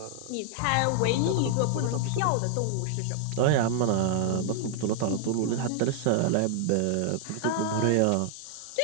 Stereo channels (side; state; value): both; different; correlation 0.00